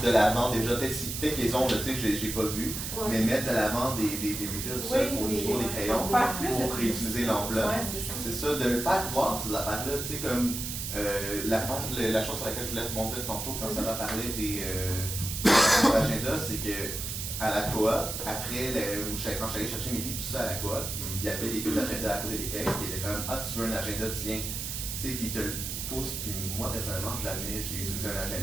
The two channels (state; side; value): noise; right; hiss, 5 dB below the sound